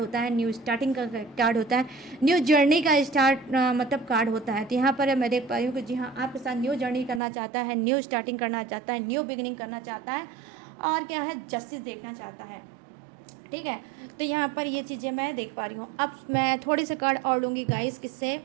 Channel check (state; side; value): drops out; left; at 7.2 s